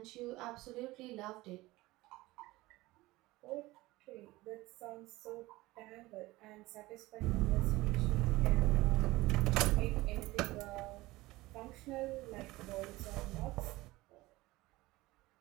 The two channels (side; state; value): left; quieter; 19.5 dB